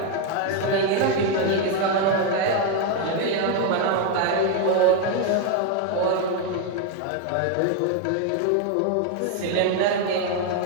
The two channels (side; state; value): both; different; correlation 0.01